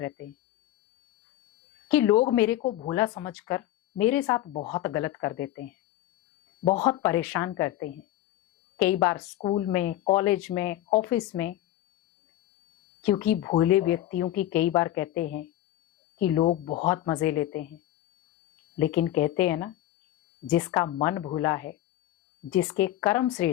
हैं कि लोग मेरे को भोला समझकर मेरे साथ बहुत गलत कर देते हैं, बहुत परेशान करते हैं। कई बार स्कूल में, कॉलेज में, ऑफिस में, क्योंकि भोले व्यक्तियों की कई बार कहते हैं कि लोग बहुत मजे लेते हैं। लेकिन कहते हैं ना, जिसका मन भोला है, जिसके कर्म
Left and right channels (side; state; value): right; quieter; 13.9 dB